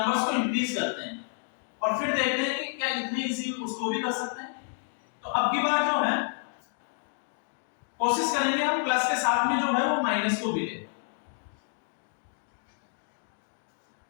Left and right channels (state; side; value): silent; right; 58 dB below the other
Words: को इंक्रीज करते हैं और फिर देखते हैं कि क्या इतनी इजी उसको भी कर सकते हैं। तो अब की बार जो है कोशिश करेंगे हम प्लस के साथ में जो है वो माइनस को भी ले।